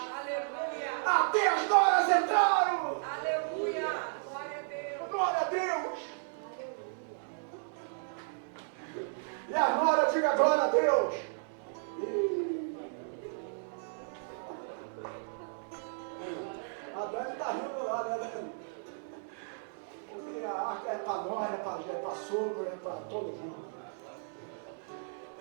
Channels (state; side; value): silent; left; digital silence